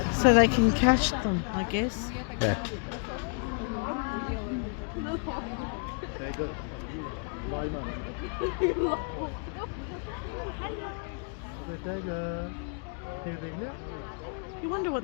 so they can catch them, I guess. Yeah. You wonder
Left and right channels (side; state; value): right; quieter; 38.7 dB